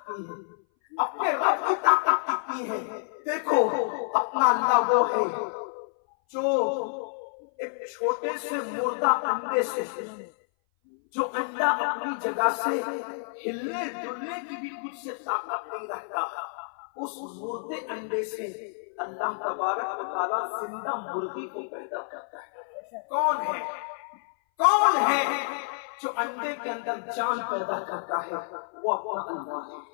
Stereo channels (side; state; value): right; silent; 58 dB below the other